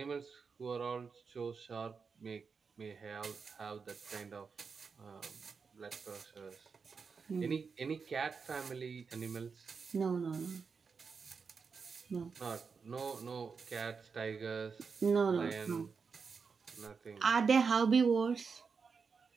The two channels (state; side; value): quieter; left; 5.4 dB